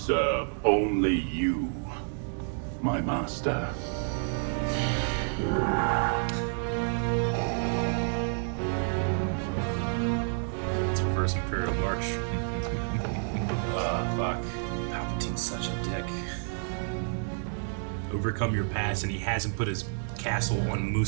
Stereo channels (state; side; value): silent; left; 58 dB below the other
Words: only you, my master. It's the first Imperial March. Fuck. Palpatine's such a dick. Overcome your past, and he hasn't put his castle on